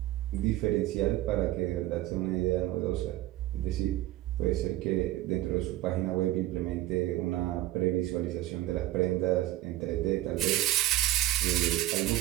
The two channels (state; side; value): quieter; left; 15.5 dB